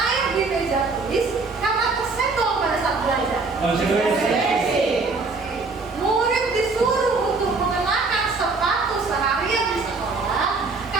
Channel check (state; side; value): quieter; left; 4.0 dB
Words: di meja tulis karena tersenggol pada saat belajar. Murid disuruh untuk mengenakan sepatu seharian di sekolah